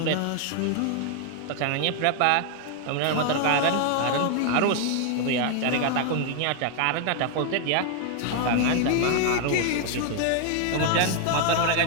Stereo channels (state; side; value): different; both; correlation 0.00